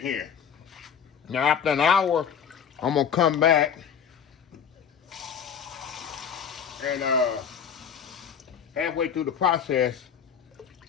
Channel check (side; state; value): right; quieter; 7.7 dB